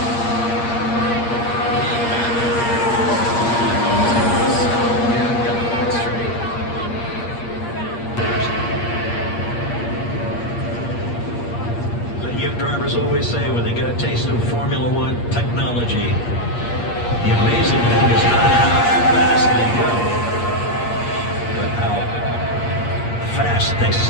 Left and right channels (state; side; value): late; right; 8.6 ms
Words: The young drivers always say when they get a taste of Formula One technology, the amazing thing is not how fast they go, but how fast they